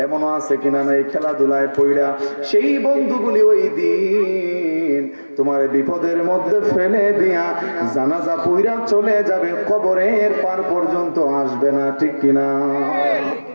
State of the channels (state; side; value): inverted; both; correlation -1.00